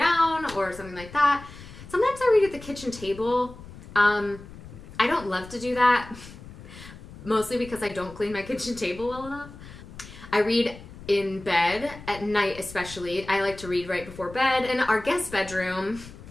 or something like that. Sometimes I read at the kitchen table. I don't love to do that, mostly because I don't clean my kitchen table well enough. I read in bed at night especially. I like to read right before bed. In our guest bedroom,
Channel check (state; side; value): noise; left; rumble, 16 dB below the sound